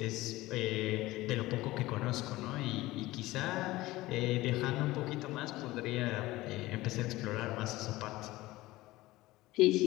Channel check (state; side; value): quieter; right; 18.4 dB